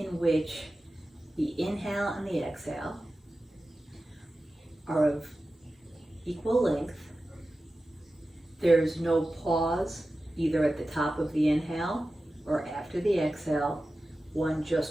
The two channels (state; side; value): normal; both; correlation 0.94